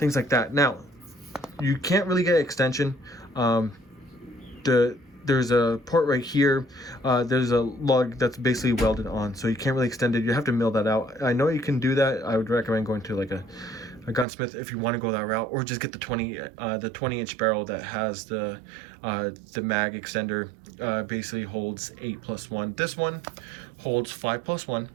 like that. Now you can't really get extension. There's a port right here. There's a lug that's basically welded on, so you can't really extend it. You have to mill that out. I know you can do that. I would recommend going to like a gunsmith if you want to go that route, or just get the 20 inch barrel that has the mag extender. Basically holds 8+1. This one holds 5+1.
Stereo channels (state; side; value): drops out; left; at 14.2 s